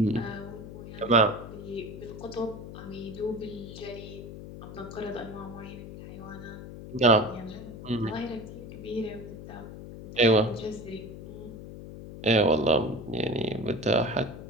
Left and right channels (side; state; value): left; noise; hum, 12 dB below the sound